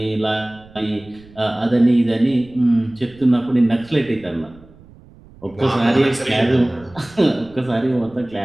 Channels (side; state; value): right; noise; rumble, 24 dB below the sound